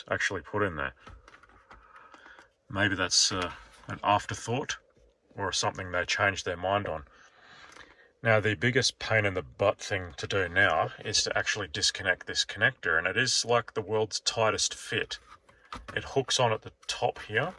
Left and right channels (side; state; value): both; identical; correlation 1.00